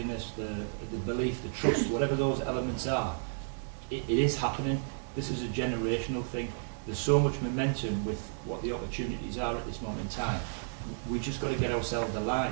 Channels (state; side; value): silent; left; digital silence